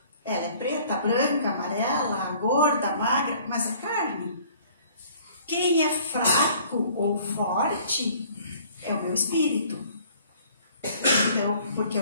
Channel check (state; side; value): inverted; both; correlation -0.55